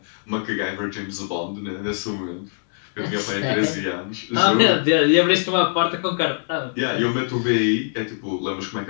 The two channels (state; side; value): silent; right; digital silence